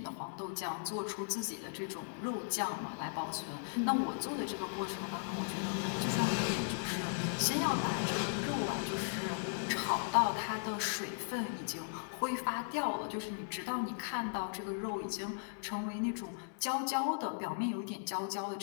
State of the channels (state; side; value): silent; right; digital silence